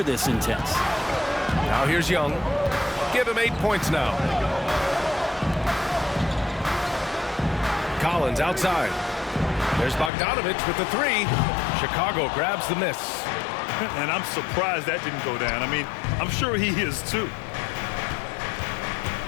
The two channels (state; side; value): drops out; right; at 10.1 s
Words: this intense. Now here's Young. Give him 8 points now. Collins outside. There's Bogdanovich with the 3. Chicago grabs the miss. And I'm surprised that didn't go down. I mean, I'm sure he is too.